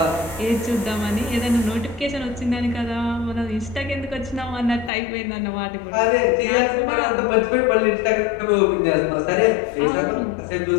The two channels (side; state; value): right; drops out; at 4.9 s